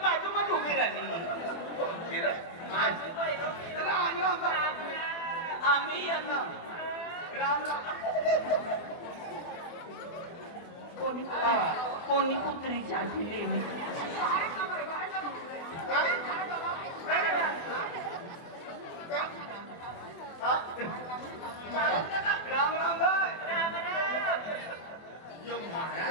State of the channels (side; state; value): right; late; 24 ms